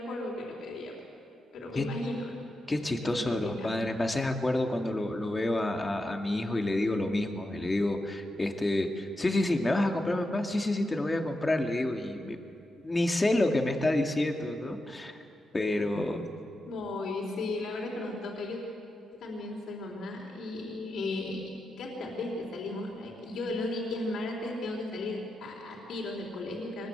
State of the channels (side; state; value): both; normal; correlation 0.88